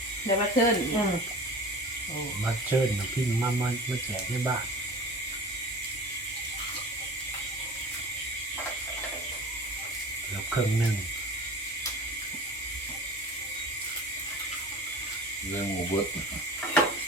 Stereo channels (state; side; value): normal; both; correlation 0.39